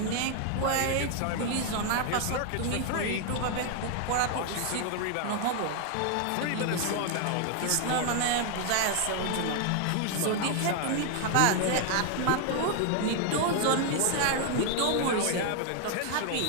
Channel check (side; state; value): both; different; correlation 0.00